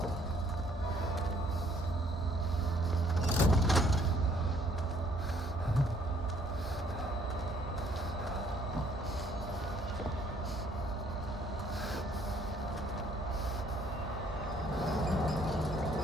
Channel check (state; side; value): normal; both; correlation 0.63